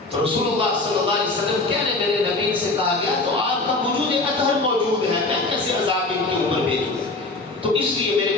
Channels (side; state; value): right; quieter; 3.2 dB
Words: تو رسول اللہ صلی اللہ علیہ وسلم کہہ رہے میرے نبی سے کہا گیا تو آپ کا وجود اطہر موجود ہے، میں کیسے عذاب ان کے اوپر بھیجوں؟ تو اس لیے